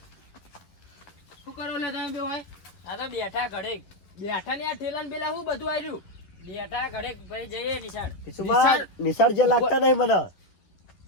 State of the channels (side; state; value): right; late; 10 ms